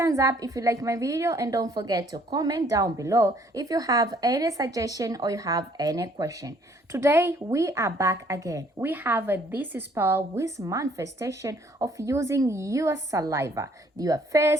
up if you like my video and don't forget to comment down below if you have any suggestion or you have any question. Today we are back again. We have this spell with manifestation of using your saliva, your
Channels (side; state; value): both; normal; correlation 0.62